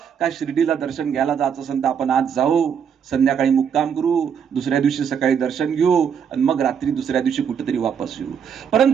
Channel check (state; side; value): quieter; left; 7.5 dB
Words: का शिर्डीला दर्शन घ्यायला जायचं असेल तर आपण आज जाऊ, संध्याकाळी मुक्काम करू, दुसऱ्या दिवशी सकाळी दर्शन घेऊ आणि मग रात्री दुसऱ्या दिवशी कुठेतरी वापस येऊ.